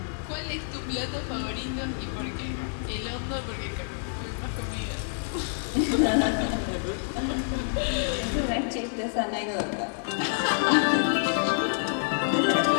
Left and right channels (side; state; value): right; silent; digital silence